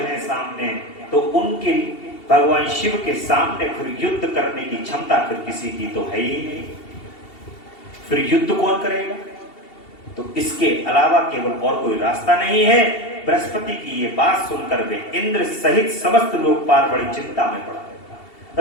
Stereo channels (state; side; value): late; right; 2.7 ms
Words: सामने, तो उनके भगवान शिव के सामने फिर युद्ध करने की क्षमता फिर किसी की तो है ही नहीं। फिर युद्ध कौन करेगा? तो इसके अलावा केवल और कोई रास्ता नहीं है। बृहस्पति की ये बात सुनकर वे इंद्र सहित समस्त लोकपाल बड़ी चिंता में पड़ा